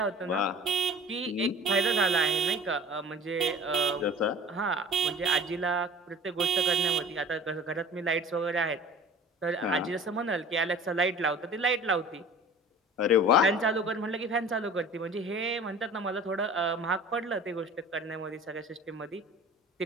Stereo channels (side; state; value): both; normal; correlation 0.43